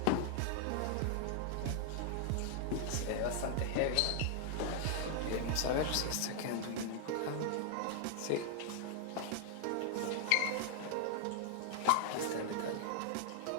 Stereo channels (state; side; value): different; both; correlation 0.00